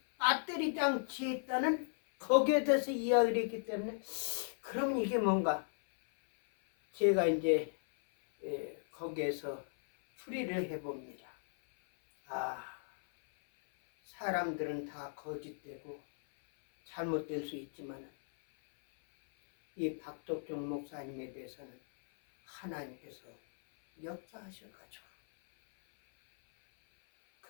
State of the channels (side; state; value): right; silent; 54 dB below the other